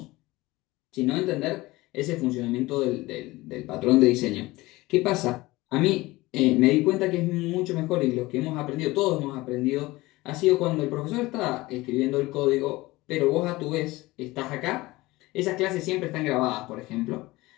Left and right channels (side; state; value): right; quieter; 20.1 dB